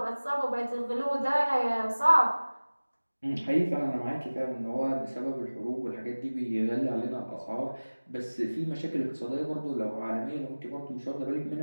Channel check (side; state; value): both; inverted; correlation -1.00